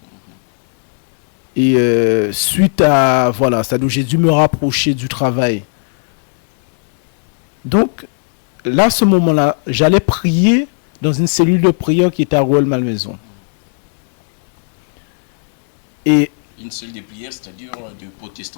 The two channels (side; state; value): right; silent; digital silence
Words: et suite à voilà, c'est-à-dire j'ai dû me rapprocher du travail. Donc là, à ce moment-là, j'allais prier dans une cellule de prière qui était à Rouelle-Malmaison. Et Une seule des prières, c'est-à-dire de